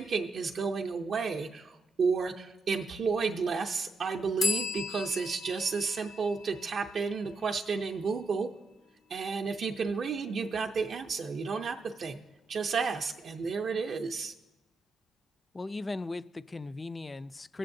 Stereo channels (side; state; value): left; quieter; 3.6 dB